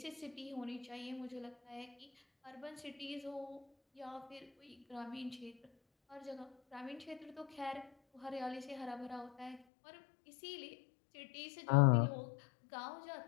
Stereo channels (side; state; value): right; drops out; at 9.6 s